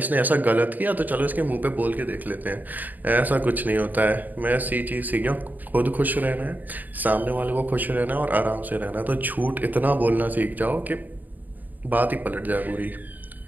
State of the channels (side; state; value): left; late; 0.084 ms